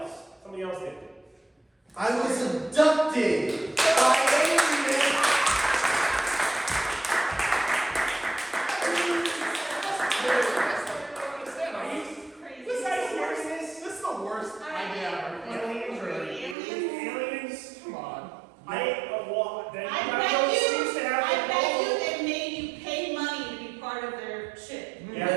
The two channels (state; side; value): drops out; left; at 16.6 s